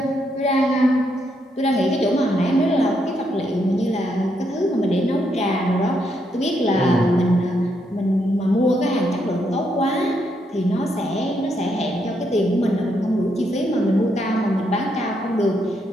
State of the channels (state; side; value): normal; both; correlation 0.77